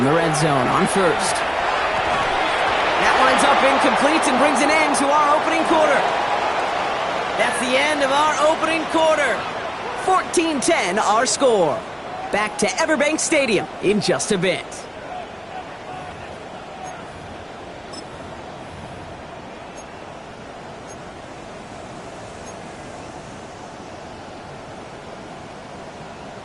the red zone on first. That winds up incomplete and brings an end to our opening quarter. That's the end of our opening quarter. 14-10 our score. Back to Everbank Stadium in just a bit.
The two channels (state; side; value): identical; both; correlation 1.00